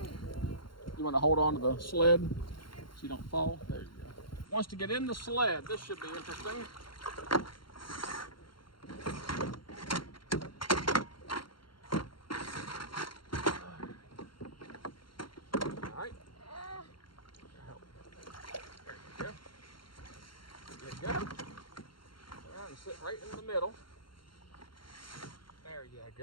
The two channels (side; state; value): right; late; 0.73 ms